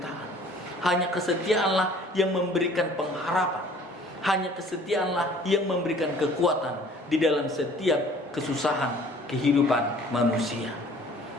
Hanya kesetiaanlah yang memberikan pengharapan. Hanya kesetiaanlah yang memberikan kekuatan di dalam setiap kesusahan kehidupan manusia.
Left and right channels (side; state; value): both; normal; correlation 0.52